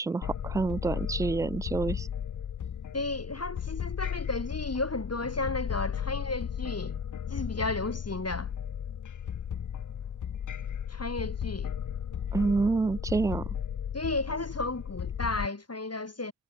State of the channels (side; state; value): both; normal; correlation 0.45